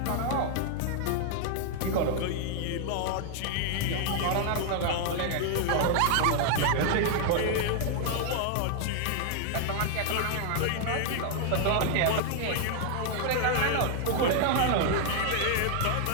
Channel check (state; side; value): different; both; correlation 0.00